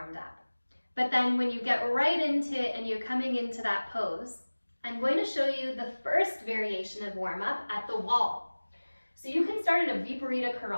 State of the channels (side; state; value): both; inverted; correlation -1.00